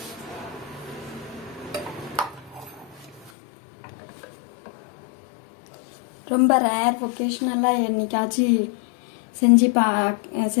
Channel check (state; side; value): drops out; right; at 3.3 s